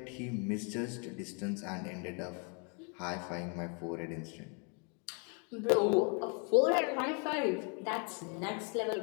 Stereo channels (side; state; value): right; quieter; 36.8 dB